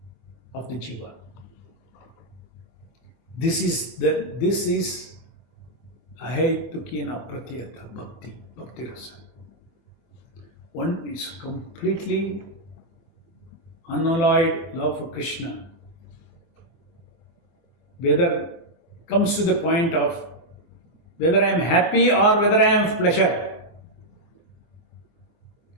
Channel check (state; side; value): late; right; 24 ms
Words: of the jiva. This is ahetuki and apratyata bhakti rasa. One is completely unalloyed love for Krishna. Whether comes to the point of whether I am happy or whether I am pleasure,